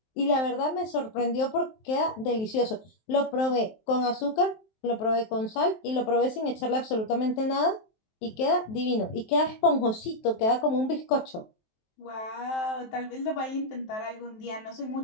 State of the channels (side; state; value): right; late; 23 ms